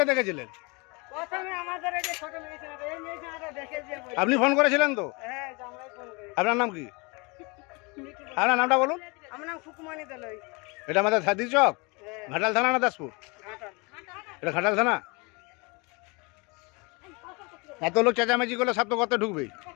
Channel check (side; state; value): right; quieter; 28.6 dB